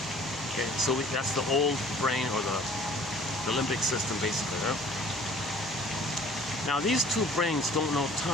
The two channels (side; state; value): both; normal; correlation 0.52